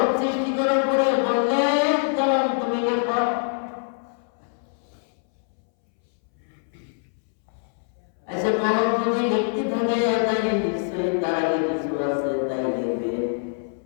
সৃষ্টি করার পরে বললেন কলম তুমি লেখো আচ্ছা কলম যদি লিখতে থাকে তাই নিশ্চয়ই তার আগে কিছু আছে তাই লিখবে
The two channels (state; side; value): silent; right; 62 dB below the other